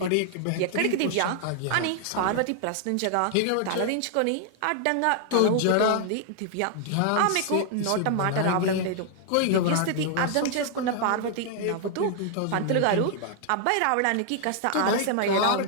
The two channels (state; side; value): different; both; correlation 0.00